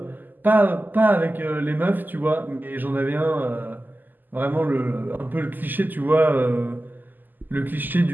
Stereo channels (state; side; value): late; left; 0.088 ms